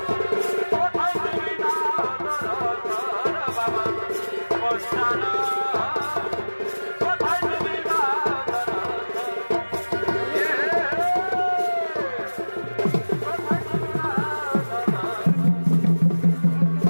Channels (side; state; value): both; inverted; correlation -1.00